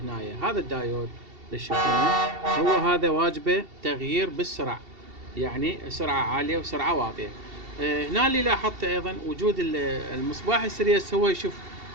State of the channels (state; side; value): late; left; 2.7 ms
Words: هنا. هذا الدايود اللي تشوفونه هو هذا واجبه تغيير بالسرعة، يعني سرعة عالية وسرعة واطية. هنا اللي لاحظت أيضا وجود المصباح السيريس، هو يشوف